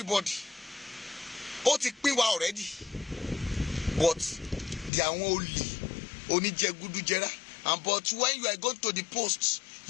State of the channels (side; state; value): right; drops out; at 4.9 s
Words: Ó ti pín wa already. But àwọn olè oníjẹgúdújẹrá. And but when you are going to the post,